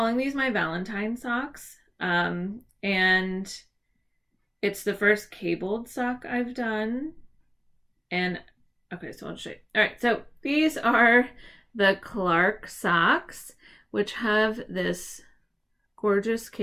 these my Valentine socks. And it's the first cabled sock I've done. And okay, so I'll show you. All right, so these are the Clark socks, which have this gorgeous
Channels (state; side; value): identical; both; correlation 1.00